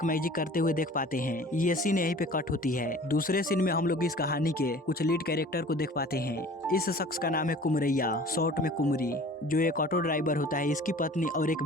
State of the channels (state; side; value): normal; both; correlation 0.46